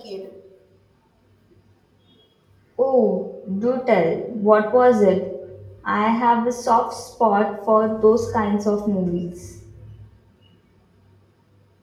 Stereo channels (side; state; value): both; identical; correlation 1.00